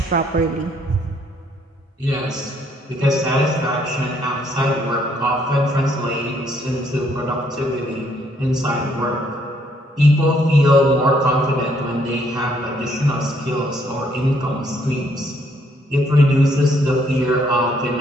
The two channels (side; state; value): both; normal; correlation 0.69